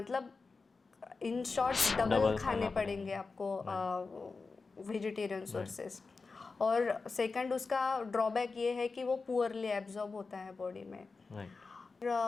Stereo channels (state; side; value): quieter; right; 4.3 dB